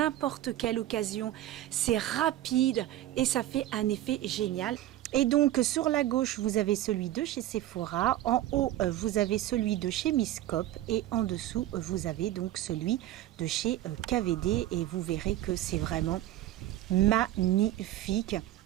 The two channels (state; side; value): quieter; left; 14.0 dB